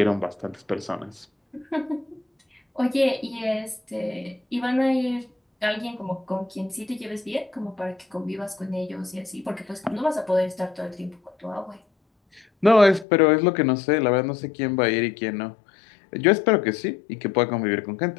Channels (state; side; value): drops out; right; at 13.1 s